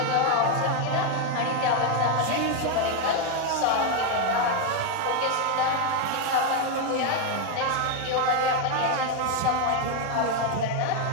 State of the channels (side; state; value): both; different; correlation 0.01